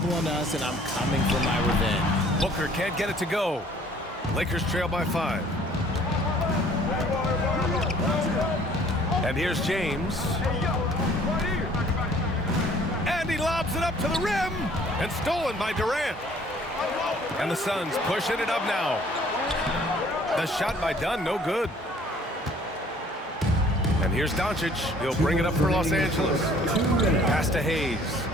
on us, and I'm coming for my revenge. Booker can't get it to go. Lakers trail by 5. And here's James. And he lobs it up to the rim. And stolen by Durant. And the Suns pushing it up now. The shot by Dunn, no good. And here's Doncic. He'll bring it up for Los Angeles. Pass to Hayes.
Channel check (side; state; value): both; normal; correlation 0.56